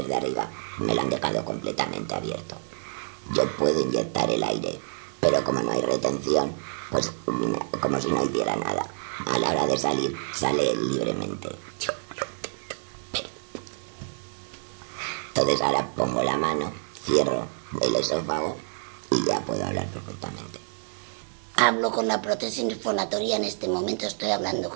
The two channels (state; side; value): silent; left; 60 dB below the other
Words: de arriba me lo han dejado completamente abierto. Yo puedo inyectar el aire, pero como no hay retención, pues como si no hiciera nada. A la hora de salir, sale libremente. Entonces ahora pongo la mano, cierro el esófago y ya puedo hablar perfectamente. Hablo con la prótesis fonatoria, en este momento estoy hablando